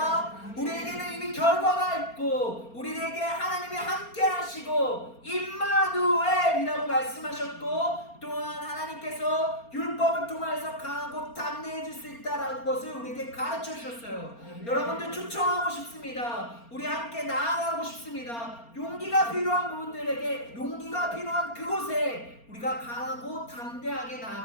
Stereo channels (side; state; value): right; late; 4.3 ms